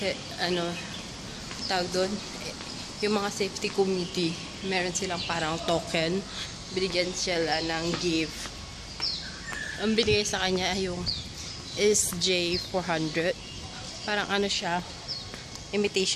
Tawag doon, yung mga safety committee, meron silang parang token, binigyan sila ng gift. Ang binigay sa kanya ay yung SJ400, parang siya,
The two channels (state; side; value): identical; both; correlation 1.00